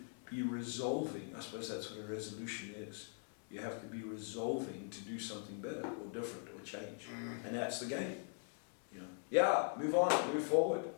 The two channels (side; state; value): right; silent; 50 dB below the other